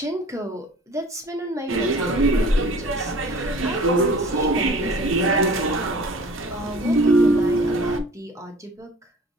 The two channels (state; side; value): normal; both; correlation 0.46